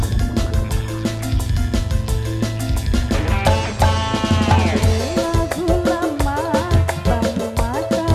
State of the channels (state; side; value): identical; both; correlation 1.00